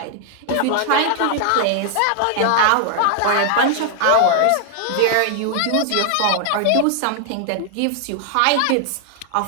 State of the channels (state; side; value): different; both; correlation 0.00